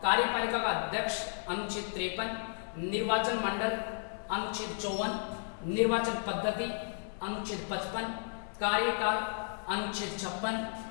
कार्यपालिका का अध्यक्ष अनुच्छेद 53, निर्वाचन मंडल अनुच्छेद 54, निर्वाचन पद्धति अनुच्छेद 55, कार्यकाल अनुच्छेद 56,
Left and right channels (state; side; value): silent; right; 55 dB below the other